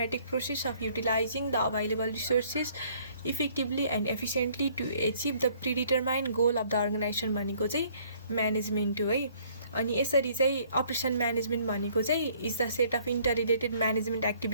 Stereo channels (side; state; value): both; inverted; correlation -0.60